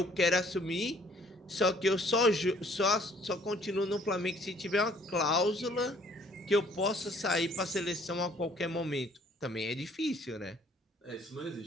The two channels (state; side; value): normal; both; correlation 0.59